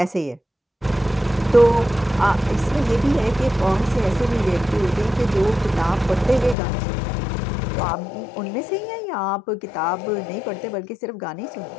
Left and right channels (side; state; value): right; drops out; at 6.6 s